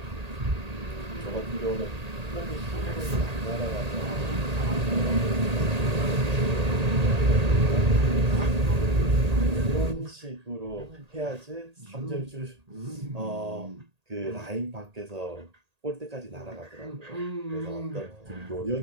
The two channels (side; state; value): left; late; 1.8 ms